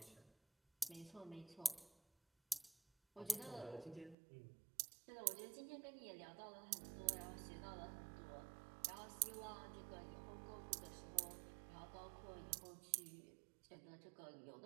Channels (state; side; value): drops out; left; at 4.2 s